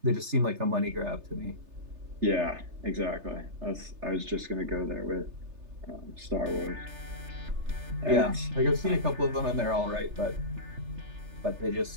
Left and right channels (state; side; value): late; left; 3.3 ms